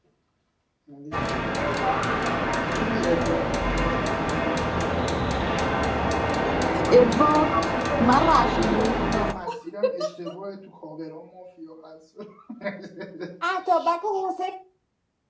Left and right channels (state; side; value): identical; both; correlation 1.00